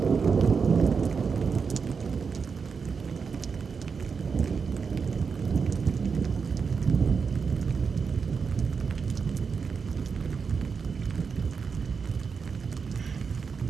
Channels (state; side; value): quieter; left; 5.6 dB